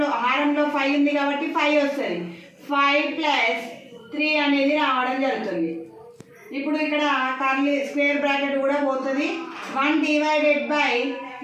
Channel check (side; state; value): both; identical; correlation 1.00